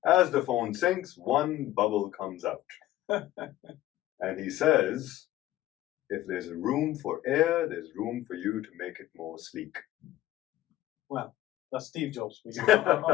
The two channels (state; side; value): quieter; right; 14.9 dB